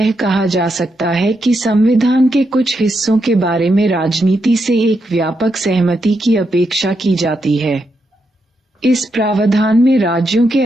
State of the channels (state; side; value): normal; both; correlation 0.82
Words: कहा जा सकता है कि संविधान के कुछ हिस्सों के बारे में राजनीति से एक व्यापक सहमति की अपेक्षा की जाती है। इस प्रावधान में राज्यों के